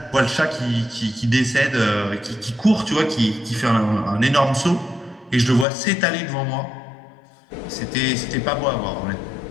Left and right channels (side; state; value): right; drops out; at 5.7 s